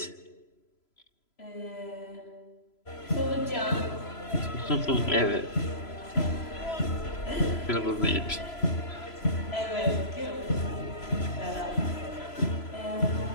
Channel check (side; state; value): right; late; 3.0 ms